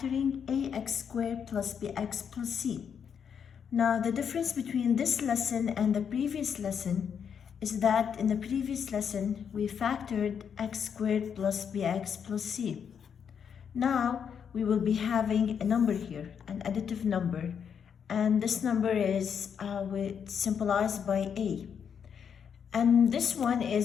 ax squared plus bx plus c. Now, the difference between this lesson and the previous lesson is that in the previous lesson, we factored x squared plus bx plus c. Now, we will be having a number here, an additive number, and this number is symbolized by a. And this one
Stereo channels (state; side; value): quieter; right; 7.4 dB